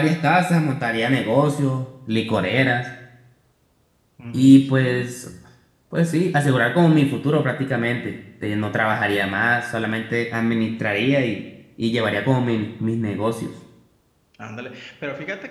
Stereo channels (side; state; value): both; identical; correlation 1.00